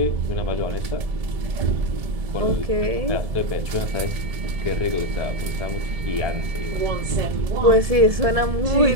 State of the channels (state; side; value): late; left; 1.7 ms